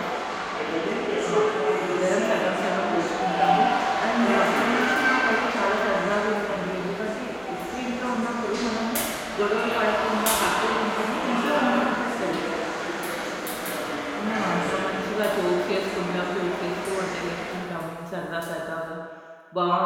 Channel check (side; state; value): both; identical; correlation 1.00